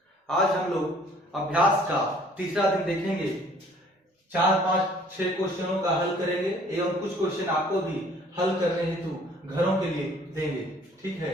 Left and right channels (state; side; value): normal; both; correlation 0.57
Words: आज हम लोग अभ्यास का तीसरा दिन देखेंगे। 4-5-6 क्वेश्चनों का हल करेंगे एवं कुछ क्वेश्चन आपको भी हल करने हेतु घरों के लिए देंगे। ठीक है,